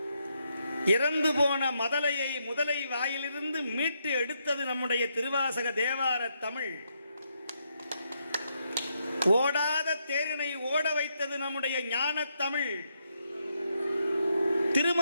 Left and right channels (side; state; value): both; inverted; correlation -0.79